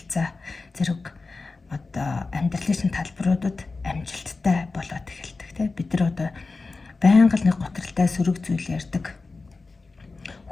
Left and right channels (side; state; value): right; quieter; 3.8 dB